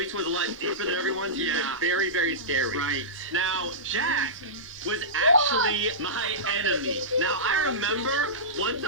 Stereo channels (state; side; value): normal; both; correlation -0.18